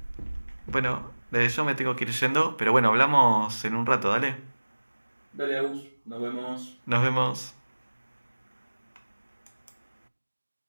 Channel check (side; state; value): both; inverted; correlation -1.00